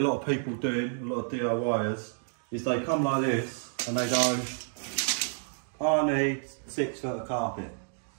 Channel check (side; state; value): left; silent; digital silence